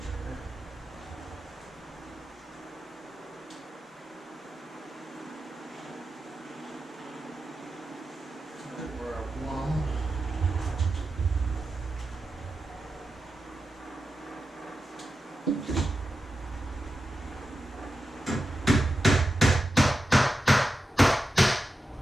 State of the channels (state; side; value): normal; both; correlation 0.91